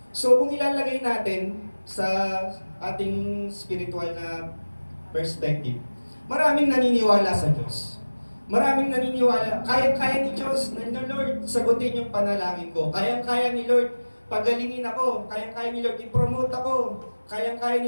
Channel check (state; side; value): inverted; both; correlation -1.00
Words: So kung ilalagay natin sa ating spiritual na perspective, maraming naniniwala sa Diyos. Maraming naniniwala, kaya-kaya ni Diyos, na Lord, sagutin yung panalangin ko. Kaya-kaya ni Lord, pagalingin ako. Kaya-kaya ni Lord, i-promote ako. Kaya-kaya